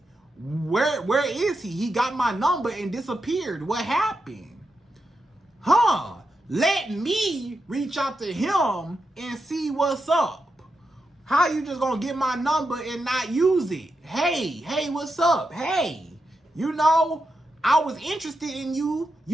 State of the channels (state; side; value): normal; both; correlation 0.87